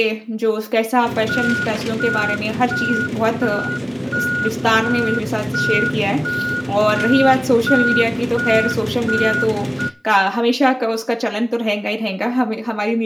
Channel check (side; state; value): both; identical; correlation 1.00